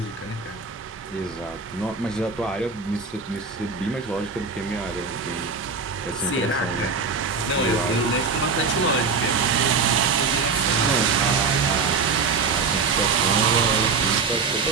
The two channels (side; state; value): left; quieter; 4.8 dB